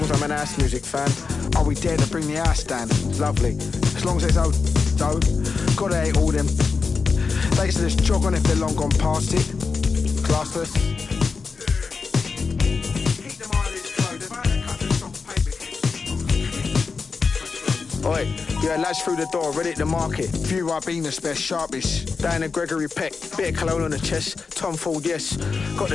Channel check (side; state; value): right; quieter; 4.8 dB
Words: as I'm an house music fan, I'll be there to bring the house down, lovely. As long as there's old dough, gotta hate all them. They used to just jog on if they're long gone past it. Classless. Oi, yeah, lads through the door, ready at the market. Few Ribena spare, sharpish. Down at Gregory Peck, bit of cologne on the chest. Tom Ford, yes. Got